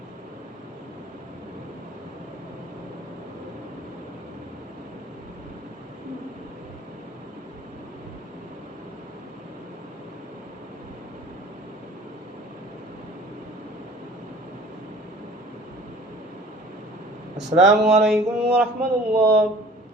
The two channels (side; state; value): both; normal; correlation 0.47